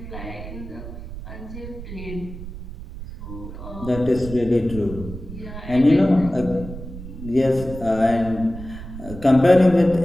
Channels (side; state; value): right; noise; rumble, 11 dB below the sound